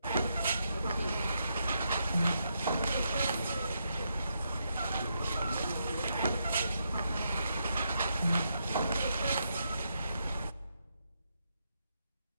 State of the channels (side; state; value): both; inverted; correlation -0.80